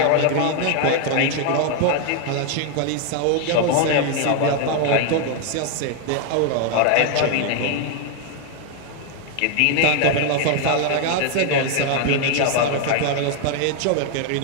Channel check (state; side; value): different; both; correlation 0.00